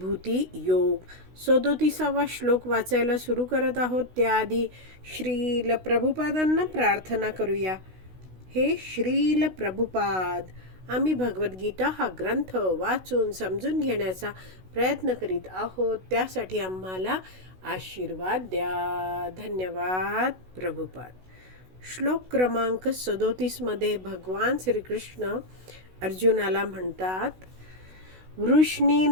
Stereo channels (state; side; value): late; left; 16 ms